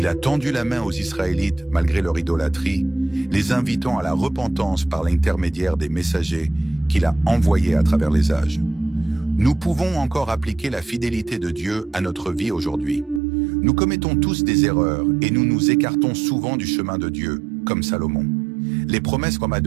a tendu la main aux Israélites malgré leur idolâtrie, les invitant à la repentance par l'intermédiaire des messagers qu'il a envoyés à travers les âges. Nous pouvons encore appliquer la fidélité de Dieu à notre vie aujourd'hui. Nous commettons tous des erreurs et nous nous écartons souvent du chemin de Dieu, comme Salomon. Les promesses comme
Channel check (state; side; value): drops out; left; at 13.2 s